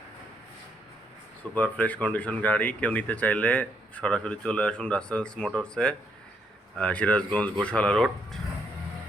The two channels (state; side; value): normal; both; correlation 0.74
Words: super fresh condition গাড়ি। কেউ নিতে চাইলে সরাসরি চলে আসুন রাসেলস মোটরসে, সিরাজগঞ্জ গোশালা রোড।